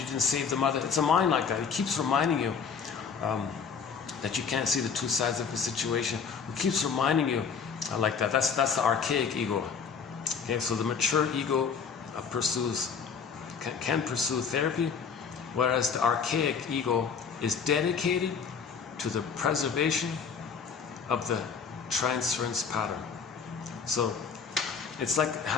didn't save the mother. It's a mind like that. It keeps reminding you that you can't see the two sides of the situation. It keeps reminding you like that. That's the archaic ego. Okay, so the mature ego can pursue therapy, whereas the archaic ego is dedicated to the preservation of the transference pattern. So it's like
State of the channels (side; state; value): right; quieter; 6.2 dB